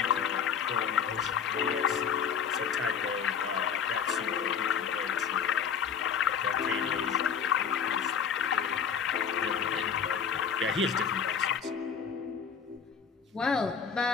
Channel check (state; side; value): quieter; right; 7.1 dB